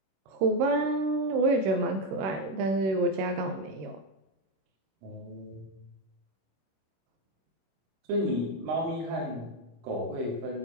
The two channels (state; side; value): late; left; 26 ms